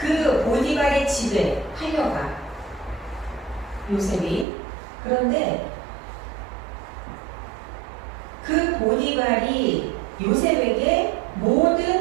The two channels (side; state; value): left; drops out; at 4.5 s